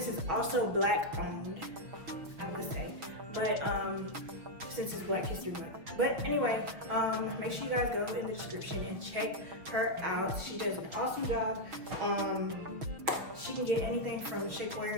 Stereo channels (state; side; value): late; left; 6.4 ms